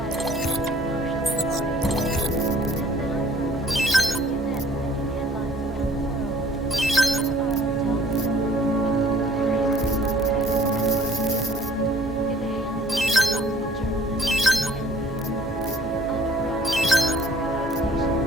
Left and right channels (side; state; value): both; normal; correlation 0.55